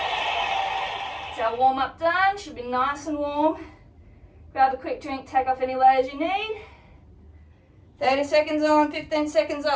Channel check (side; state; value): both; identical; correlation 1.00